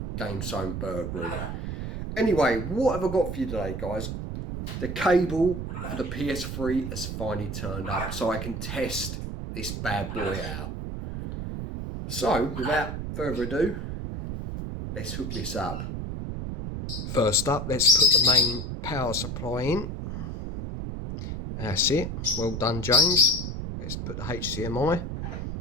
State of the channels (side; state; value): right; noise; rumble, 5 dB below the sound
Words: GameZone Birdroom. Anyway, what have I got for you today, guys? The cable for the PS3 has finally turned up, so I can test this bad boy out. So, without further ado, let's hook this up. First up, let's put the main power supply in. That's it. Well done, James. Let's put the HDMI.